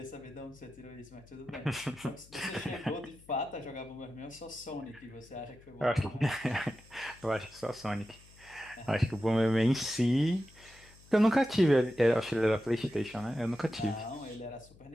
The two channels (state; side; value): noise; left; hum, 24 dB below the sound